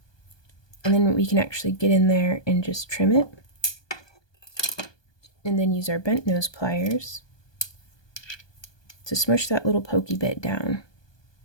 And then we can actually get in there and just trim it. And then use our bent nose pliers to smush that little pokey bit down.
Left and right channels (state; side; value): late; right; 1.2 ms